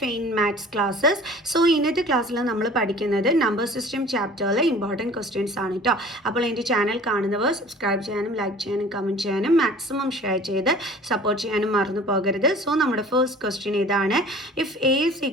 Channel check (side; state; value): both; normal; correlation 0.46